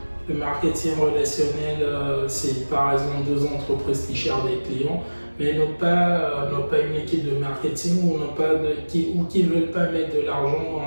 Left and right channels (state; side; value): inverted; both; correlation -1.00